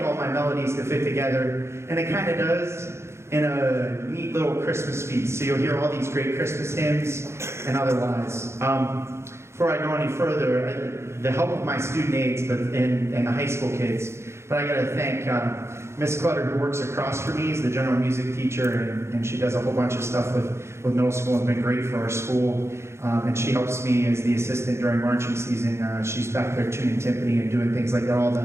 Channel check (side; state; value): left; late; 0.13 ms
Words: all my melodies to fit together, and it kind of does in a neat little Christmas feast. So you'll hear all these great Christmas hymns and otherwise. Before I go any further, the help of my student aides and the high school kids, but I gotta thank Miss Clutter, who works across from me, is the general music teacher, and she does a whole bunch of stuff with middle school and been great for our school. And she helps me as the assistant during marching season. She's back there tuning timpani and doing things like that, all